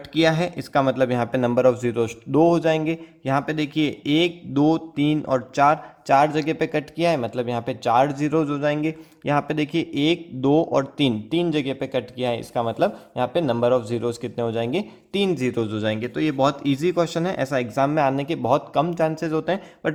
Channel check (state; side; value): identical; both; correlation 1.00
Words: किया है। इसका मतलब यहाँ पे नंबर ऑफ जीरोज 2 हो जाएंगे। यहाँ पे देखिए 1 2 3 और 4 जगह पे कट किया है, मतलब यहाँ पे 4 जीरोज हो जाएंगे। यहाँ पे देखिए 1 2 और 3 जगह पे कट किया है, इसका मतलब यहाँ पे नंबर ऑफ जीरोज कितने हो जाएंगे, 3 जीरोज हो जाएंगे। तो ये बहुत इजी क्वेश्चन है, ऐसा एग्जाम में आने के बहुत कम चांसेस होते हैं, बट